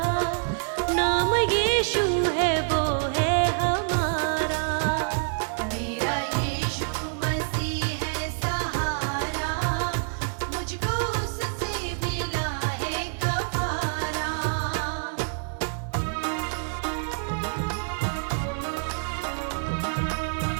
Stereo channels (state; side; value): silent; left; digital silence